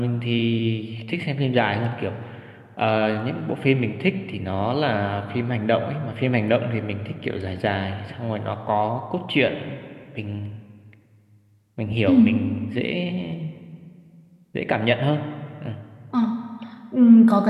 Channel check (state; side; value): identical; both; correlation 1.00